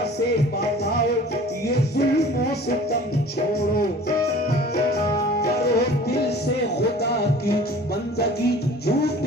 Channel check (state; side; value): normal; both; correlation 0.46